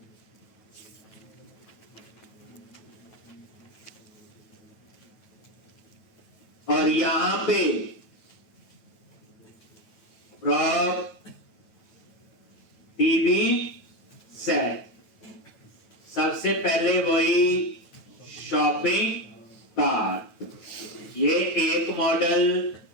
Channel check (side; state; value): right; late; 9.2 ms